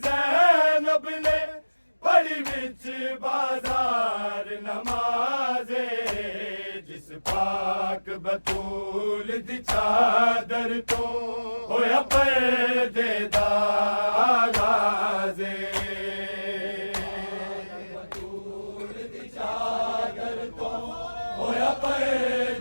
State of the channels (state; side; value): inverted; both; correlation -1.00